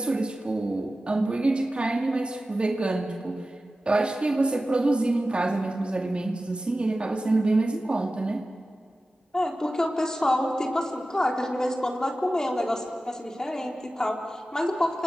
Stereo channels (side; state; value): both; normal; correlation 0.95